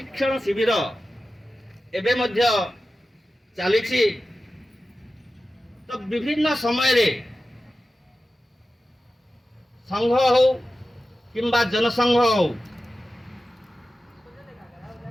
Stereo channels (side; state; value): both; normal; correlation 0.94